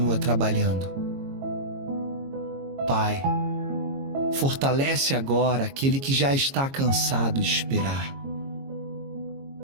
trabalhando. Pai, fortalece agora aquele que já está cansado de esperar.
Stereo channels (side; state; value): left; late; 22 ms